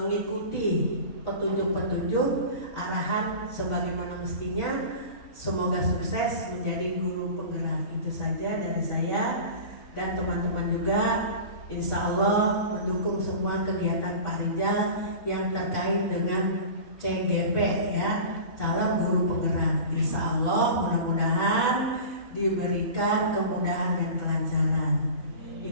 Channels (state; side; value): late; right; 3.6 ms